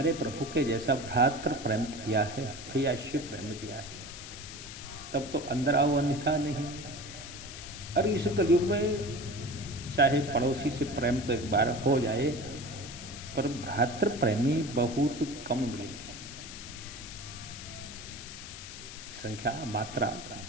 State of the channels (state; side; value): noise; left; hiss, 12 dB below the sound